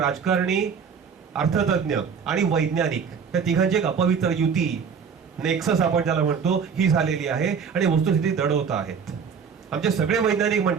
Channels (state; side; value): quieter; left; 6.5 dB